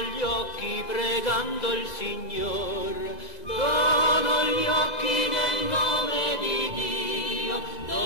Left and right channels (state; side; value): late; right; 2.2 ms